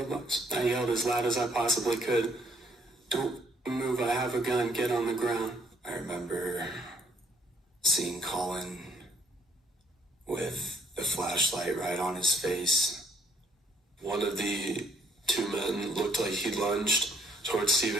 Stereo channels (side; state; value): both; normal; correlation 0.66